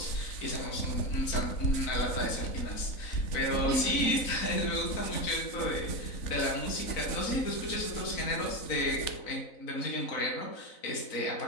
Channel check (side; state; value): right; late; 4.0 ms